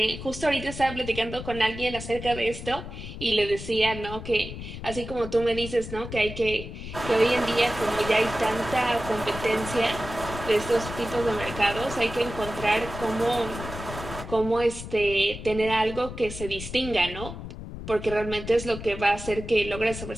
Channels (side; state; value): left; noise; rumble, 10 dB below the sound